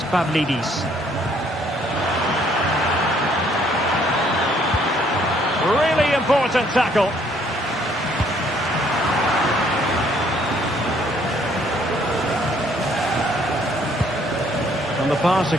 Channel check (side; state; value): both; normal; correlation 0.64